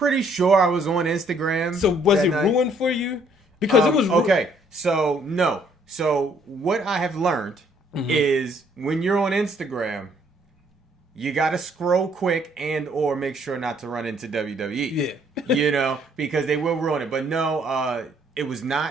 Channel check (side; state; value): both; normal; correlation 0.65